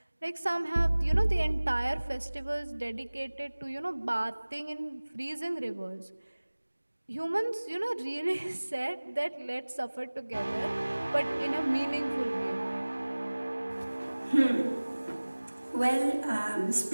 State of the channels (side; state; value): both; inverted; correlation -1.00